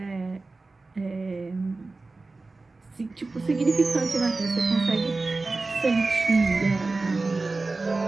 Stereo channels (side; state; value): left; quieter; 3.5 dB